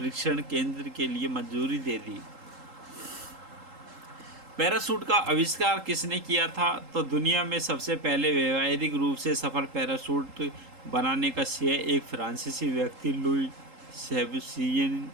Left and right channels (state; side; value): late; left; 3.8 ms